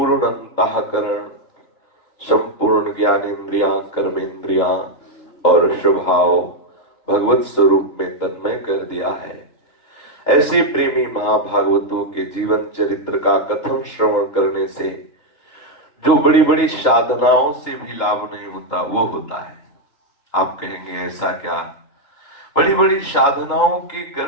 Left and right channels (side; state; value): right; late; 3.0 ms